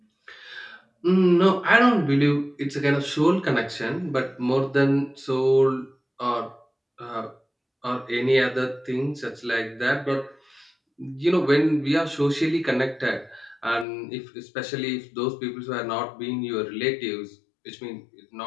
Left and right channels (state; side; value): drops out; right; at 13.9 s